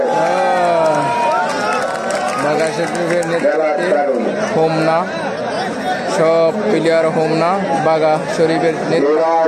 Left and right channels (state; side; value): identical; both; correlation 1.00